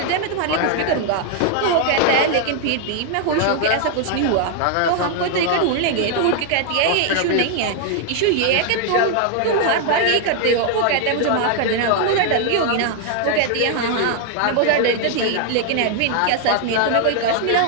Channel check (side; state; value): both; different; correlation 0.00